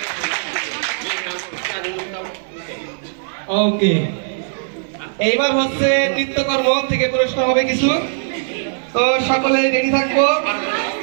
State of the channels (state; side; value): silent; left; digital silence